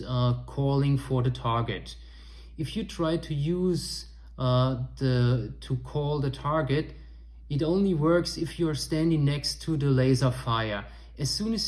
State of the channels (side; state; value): both; identical; correlation 1.00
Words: calling for the target. If you try to use to call the target, it only works if you are standing next to the Laserfire. As soon